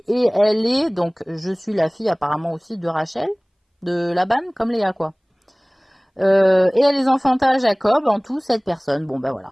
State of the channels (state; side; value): identical; both; correlation 1.00